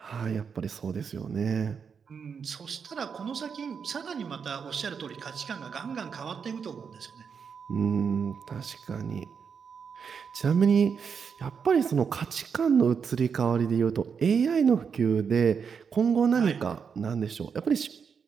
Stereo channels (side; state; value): left; quieter; 6.4 dB